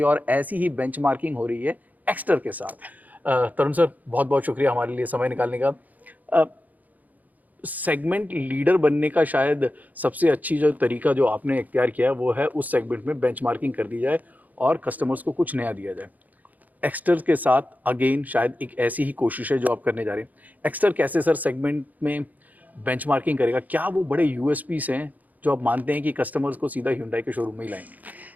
है और ऐसी ही बेंचमार्किंग हो रही है एक्स्टर के साथ। तरुण सर, बहुत-बहुत शुक्रिया हमारे लिए समय निकालने का। अ, सेगमेंट लीडर बनने का शायद सबसे अच्छी जो तरीका जो आपने इख्तियार किया है वो है उस सेगमेंट में बेंचमार्किंग कर दी जाए और कस्टमर्स को कुछ नया दिया जाए। एक्स्टर के साथ अगेन शायद एक ऐसी ही कोशिश है जो आप करने जा रहे हैं। एक्स्टर कैसे सर सेगमेंट में बेंचमार्किंग करेगा? क्या वो बड़े यूएसपीज़ हैं जो आप मानते हैं कि कस्टमर्स को सीधा Hyundai के शोरूम में ही लाएँगे?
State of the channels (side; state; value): left; late; 0.080 ms